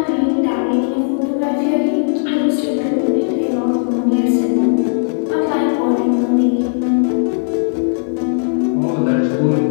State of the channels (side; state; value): right; silent; 60 dB below the other